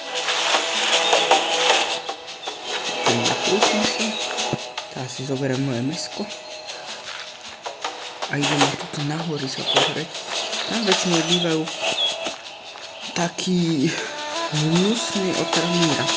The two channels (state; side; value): identical; both; correlation 1.00